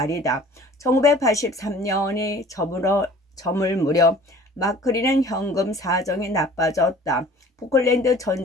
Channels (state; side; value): normal; both; correlation 0.48